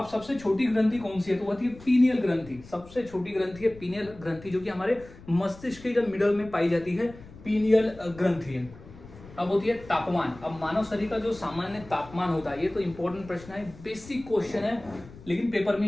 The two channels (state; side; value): noise; left; rumble, 19 dB below the sound